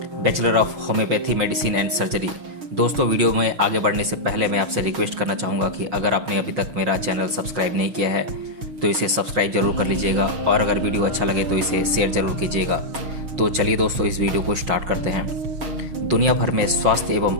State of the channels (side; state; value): left; late; 6.2 ms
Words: bachelor of homeopathy medicine and surgery. दोस्तों, वीडियो में आगे बढ़ने से पहले मैं आपसे रिक्वेस्ट करना चाहूँगा कि अगर आपने अभी तक मेरा चैनल सब्सक्राइब नहीं किया है तो इसे सब्सक्राइब जरूर कर लीजिएगा, और अगर वीडियो अच्छा लगे तो इसे शेयर जरूर कीजिएगा। तो चलिए दोस्तों, इस वीडियो को स्टार्ट करते हैं। दुनिया भर में स्वास्थ्य